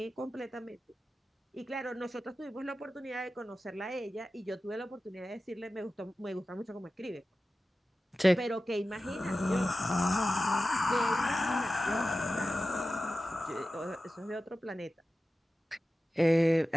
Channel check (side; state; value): both; normal; correlation 0.94